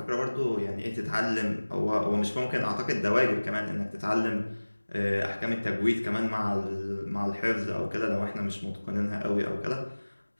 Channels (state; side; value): inverted; both; correlation -1.00